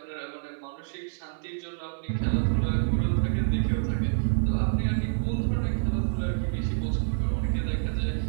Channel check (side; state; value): left; silent; 60 dB below the other